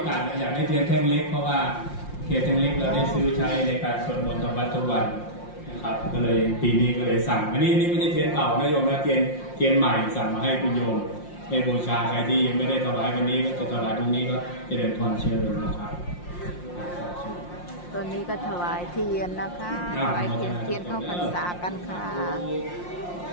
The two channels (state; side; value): late; right; 5.7 ms